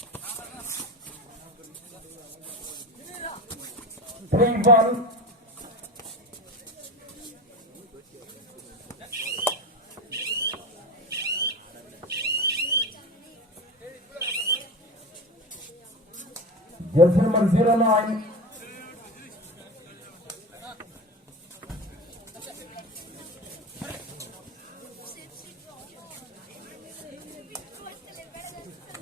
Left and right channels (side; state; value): both; normal; correlation 0.26